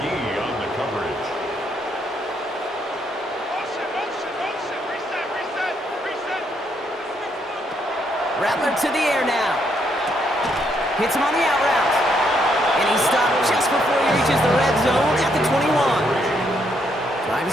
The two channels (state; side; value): normal; both; correlation 0.74